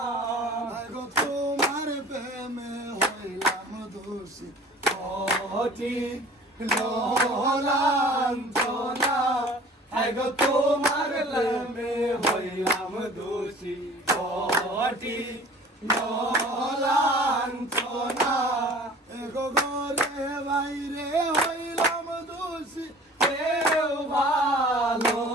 তোমার প্রেমে হইলাম দোষী কঠিন লাঞ্ছনা এগো তোমার প্রেমে হইলাম দোষী কঠিন লাঞ্ছনা এগো ঘরে বাইরে হইলাম দোষী কেউ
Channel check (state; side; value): normal; both; correlation 0.46